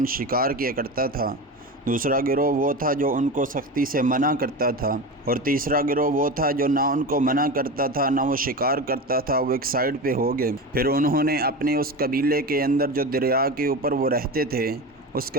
شکار کیا کرتا تھا، دوسرا گروہ وہ تھا جو ان کو سختی سے منع کرتا تھا، اور تیسرا گروہ وہ تھا جو نہ ان کو منع کرتا تھا نہ وہ شکار کرتا تھا، وہ ایک سائیڈ پہ ہو گئے۔ پھر انہوں نے اپنے اس قبیلے کے اندر جو دریا کے اوپر وہ رہتے تھے، اس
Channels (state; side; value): normal; both; correlation 0.25